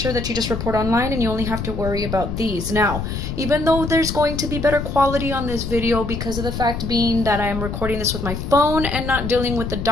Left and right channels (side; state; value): left; noise; rumble, 5 dB below the sound